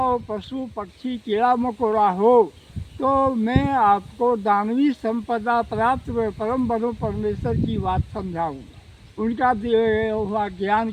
पशु, पक्षी, कीड़ा मकोड़ा हो, तो मैं आपको दानवी संपदा प्राप्त परम ब्रह्म परमेश्वर की बात समझाऊंगा, उनका दिया हुआ ज्ञान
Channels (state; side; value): identical; both; correlation 1.00